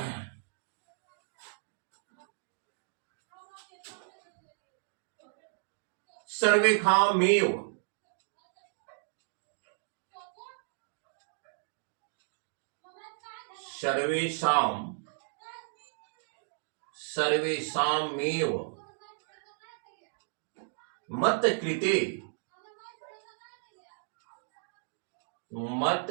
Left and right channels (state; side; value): silent; left; digital silence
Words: सर्वेखामेव, सर्वेषाम, सर्वेषामेव मत कृते, मत